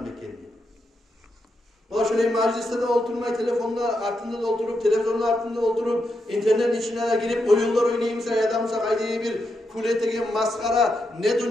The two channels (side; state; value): both; normal; correlation 0.84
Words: ekenini. Ola şöyle mecliste de oturmayı, telefonla altında da oturup, televizyonla altında oturup, internet içine de girip oyunlar oynayımsa ya da kaydığı bir kuletege maskara, ne